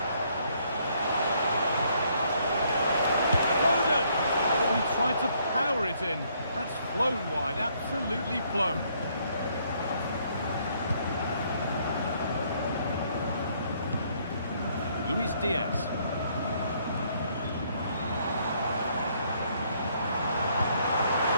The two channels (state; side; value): inverted; both; correlation -0.68